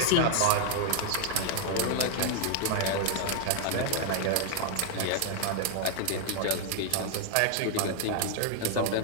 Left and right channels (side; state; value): both; different; correlation 0.00